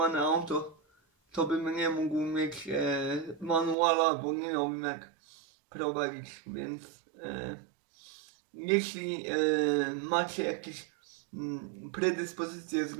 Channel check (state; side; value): drops out; left; at 3.8 s